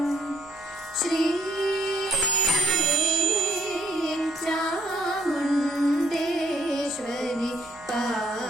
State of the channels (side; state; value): right; noise; hum, 26 dB below the sound